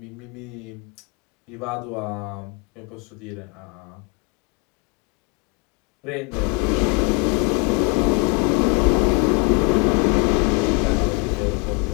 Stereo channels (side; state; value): right; quieter; 31.9 dB